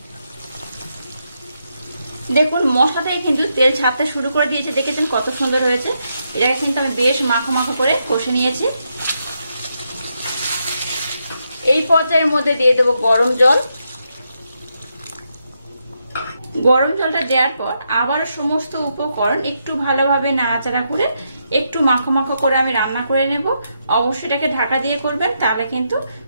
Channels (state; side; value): inverted; both; correlation -0.81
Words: দেখুন মশলা থেকে কিন্তু তেল ছাড়তে শুরু করে দিয়েছে, দেখেছেন কত সুন্দর হয়েছে। এটাকে কিন্তু আমি বেশ মাখো মাখো করে কষে নিয়েছি। এই পর্যায়ের মধ্যে দিয়ে দেবো গরম জল। গরম জলটা দেওয়ার পর আবার সমস্ত উপকরণ একটু ভালোভাবে নাড়াচাড়া করে একটু মাখো মাখো করে আমি রান্না করে নেব। অবশ্যই এটাকে ঢাকা দিয়ে করবেন, তাহলে কিন্তু